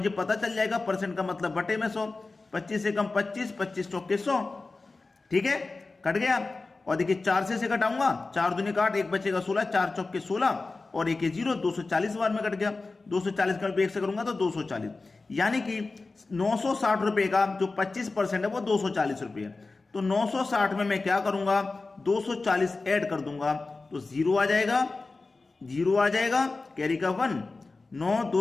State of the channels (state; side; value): quieter; right; 3.6 dB